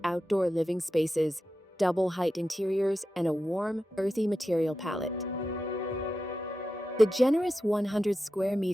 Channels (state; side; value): normal; both; correlation 0.91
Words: outdoor living spaces, double-height interiors, and a warm, earthy material palette. The generous 100 square